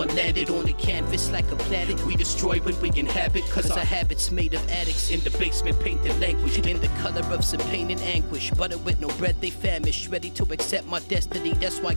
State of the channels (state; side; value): inverted; both; correlation -1.00